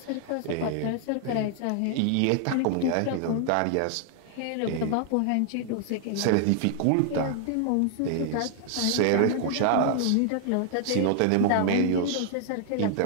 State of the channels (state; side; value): different; both; correlation 0.00